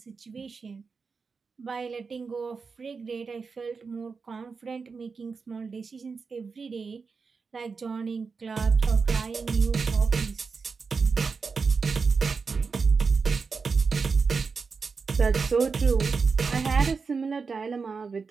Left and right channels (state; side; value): quieter; left; 5.0 dB